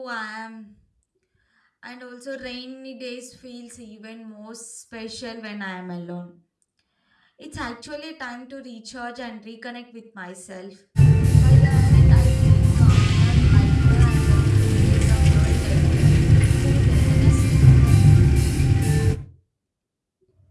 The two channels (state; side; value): identical; both; correlation 1.00